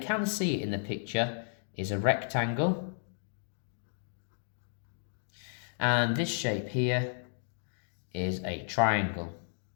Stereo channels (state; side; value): silent; right; digital silence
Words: see it in the picture, is a rectangle. And this shape here is a triangle.